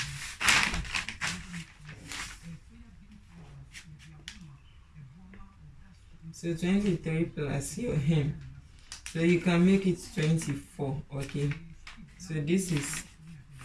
So 23 plus your hem. So you can make it 24. Okay. So this is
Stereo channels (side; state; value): both; identical; correlation 1.00